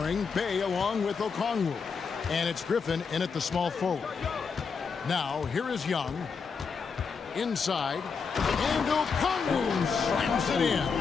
Bay along with Okongwu. And it's Griffin in at the small forward. Now, here is Young. Inside. And Okongwu slams it in.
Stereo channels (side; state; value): right; quieter; 5.6 dB